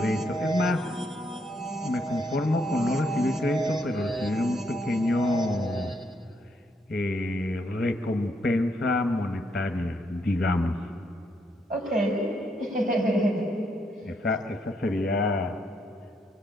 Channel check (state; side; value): normal; both; correlation 0.76